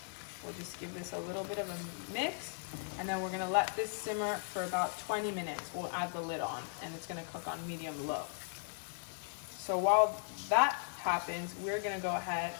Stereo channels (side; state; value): right; silent; digital silence